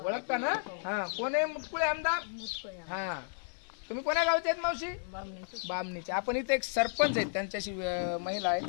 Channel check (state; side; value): silent; right; digital silence